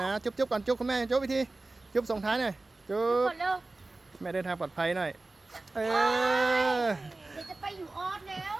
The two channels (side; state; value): left; quieter; 3.1 dB